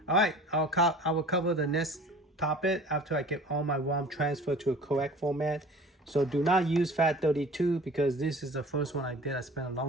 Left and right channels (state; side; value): normal; both; correlation 0.44